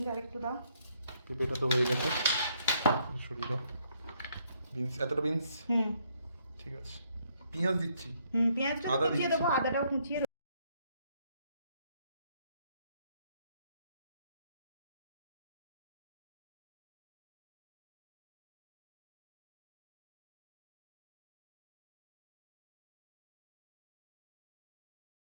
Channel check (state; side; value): inverted; both; correlation -0.70